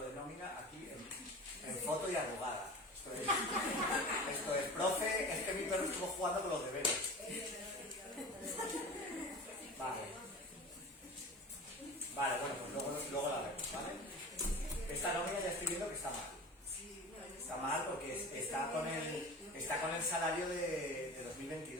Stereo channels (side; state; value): both; normal; correlation 0.35